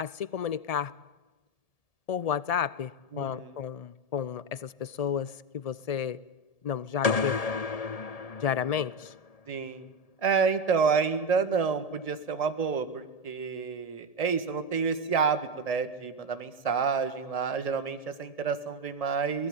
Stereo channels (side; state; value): right; late; 1.7 ms